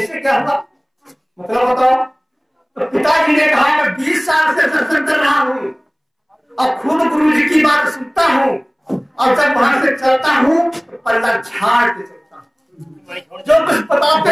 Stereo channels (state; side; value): identical; both; correlation 1.00